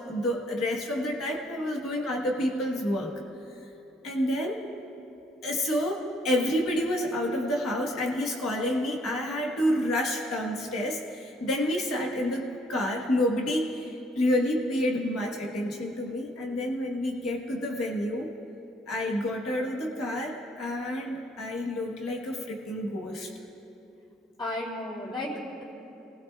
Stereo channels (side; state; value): both; normal; correlation 0.65